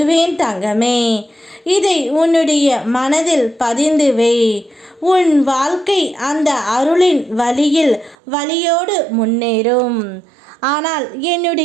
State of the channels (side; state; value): left; drops out; at 8.2 s